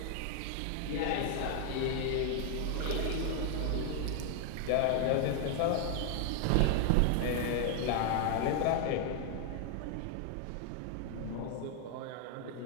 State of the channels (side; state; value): both; different; correlation 0.00